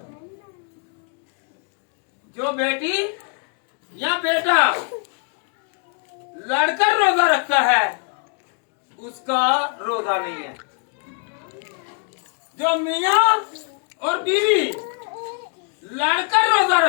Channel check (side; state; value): right; quieter; 39.8 dB